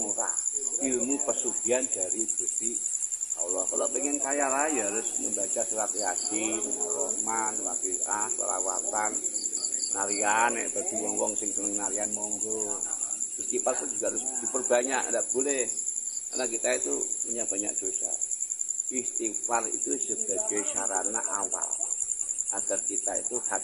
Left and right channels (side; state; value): both; identical; correlation 1.00